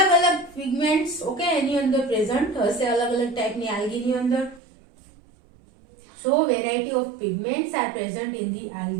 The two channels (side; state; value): left; drops out; at 4.6 s